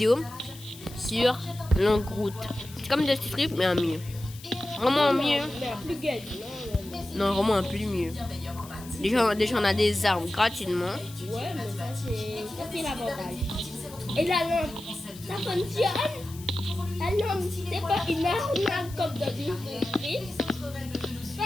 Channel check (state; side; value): noise; left; hiss, 18 dB below the sound